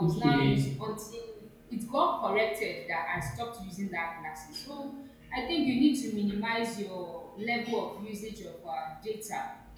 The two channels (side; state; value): both; identical; correlation 1.00